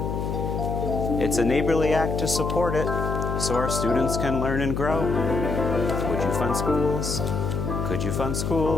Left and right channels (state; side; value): noise; left; hum, 2 dB below the sound